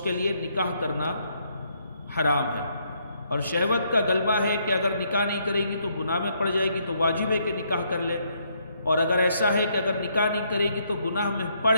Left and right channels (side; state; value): both; inverted; correlation -0.72